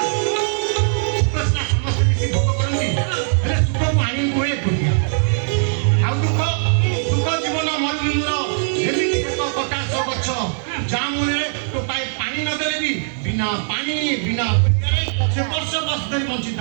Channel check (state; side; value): silent; left; digital silence